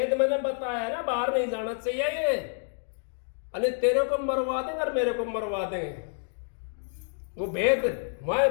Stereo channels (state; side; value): silent; right; digital silence